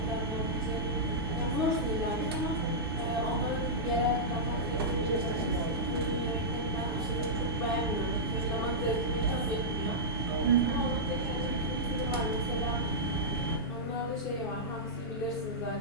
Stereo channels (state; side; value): normal; both; correlation -0.12